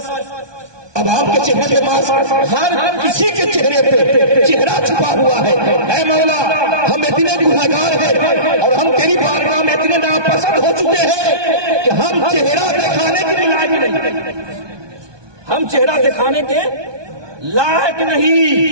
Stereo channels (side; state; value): left; late; 1.2 ms